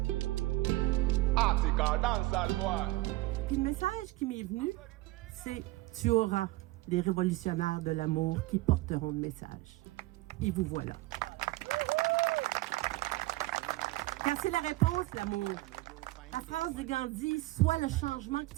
Article dancehall boy. Puis le message qui m'est venu, c'est « Tu auras les révolutionnaires de l'amour qui porteront le message. » Et vous voilà. Car c'est la réponse, l'amour. La phrase de Gandhi « Sois le changement que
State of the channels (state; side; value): quieter; left; 19.6 dB